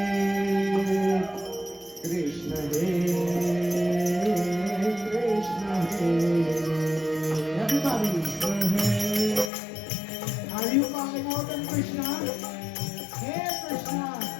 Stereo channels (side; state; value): right; drops out; at 9.5 s